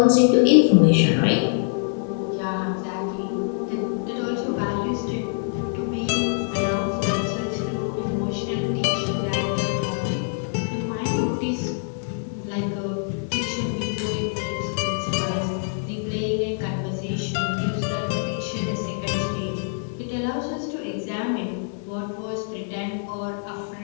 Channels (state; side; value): silent; right; digital silence